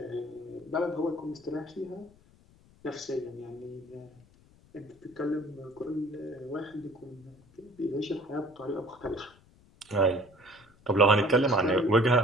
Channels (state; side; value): noise; left; rumble, 28 dB below the sound